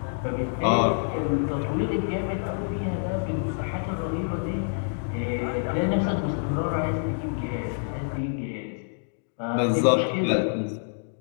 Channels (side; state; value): right; silent; digital silence